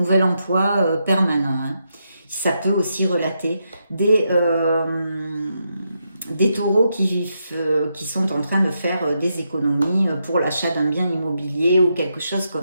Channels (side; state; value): both; inverted; correlation -0.82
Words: emploi permanent, hein. Ça peut aussi relater des taureaux qui sont en train de faire des économies pour l'achat d'un bien immobilier ou quelque chose